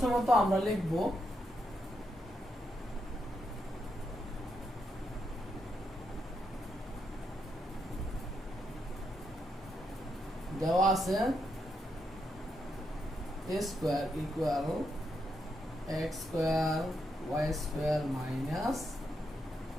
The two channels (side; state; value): both; normal; correlation 0.81